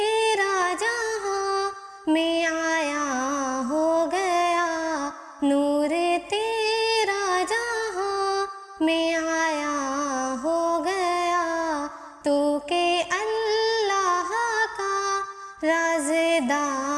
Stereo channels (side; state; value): both; identical; correlation 1.00